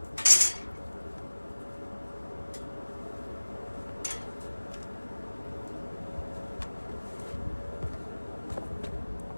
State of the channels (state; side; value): inverted; both; correlation -1.00